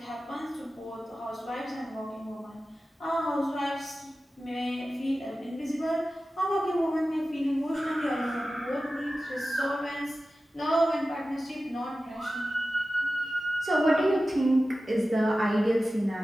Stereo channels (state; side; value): normal; both; correlation 0.95